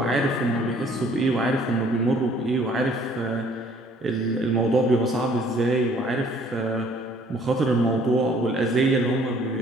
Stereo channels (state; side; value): normal; both; correlation 0.58